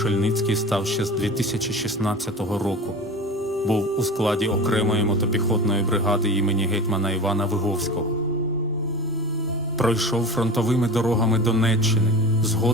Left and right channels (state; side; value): normal; both; correlation 0.32